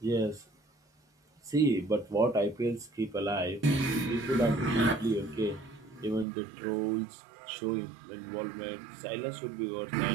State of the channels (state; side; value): drops out; left; at 6.2 s